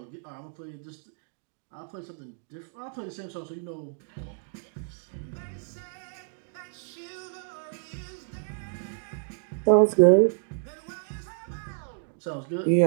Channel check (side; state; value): left; silent; digital silence